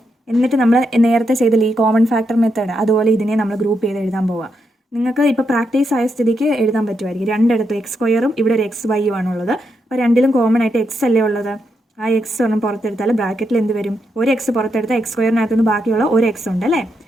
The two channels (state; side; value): normal; both; correlation 0.82